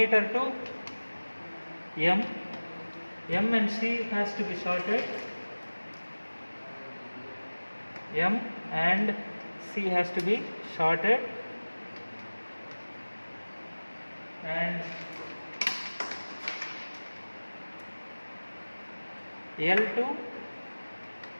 to M. M and C has to be shorted. M and C has to be shorted, and L2,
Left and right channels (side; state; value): both; inverted; correlation -1.00